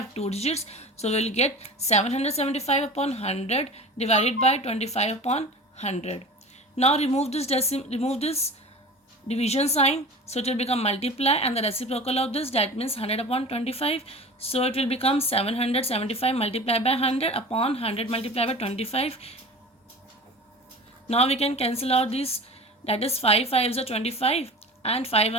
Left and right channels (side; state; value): both; normal; correlation 0.36